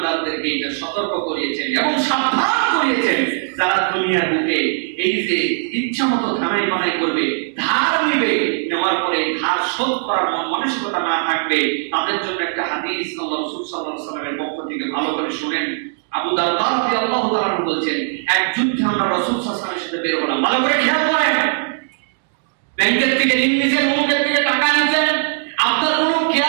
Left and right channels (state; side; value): silent; left; digital silence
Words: এটা সতর্ক করিয়েছেন এবং সাবধান করিয়েছেন। যারা দুনিয়ার বুকে এই যে ইচ্ছামতো ধানাই বানাই করবে, ধার নিবে, নেওয়ার পরে ধার শোধ করার মানসিকতা না থাকবে, তাদের জন্য একটা হাদিস আল্লাহ রাসূল সাল্লাল্লাহু আলাইহি ওয়াসাল্লামের পক্ষ থেকে ভালো করে শুনেন। আবু দারদা রাদিয়াল্লাহু তাআলা বলছেন, এক যুদ্ধে আমরা রাসূল সাল্লাল্লাহু আলাইহি ওয়াসাল্লামের সাথে বের হলাম। ভালো করে খেয়াল করেন, ব্যাংকের থেকে ঋণ নিছেন, অমুকের থেকে টাকা নিছেন, আপনার কোনো